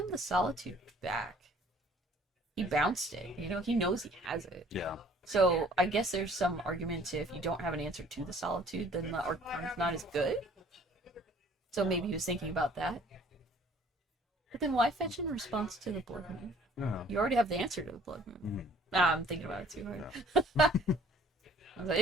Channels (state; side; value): normal; both; correlation 0.55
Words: the solitude back. He bounced it. You know, he knows he has it. Yeah. So I guess there's some argument to if you don't have an answer to the solitude, then the arcana's not as good. So maybe he was thinking about that. But then why fetch in response to the Blood Moon? Yeah. You already have the answer to the Blood Moon. I'm thinking about it too hard. Yeah. I was like,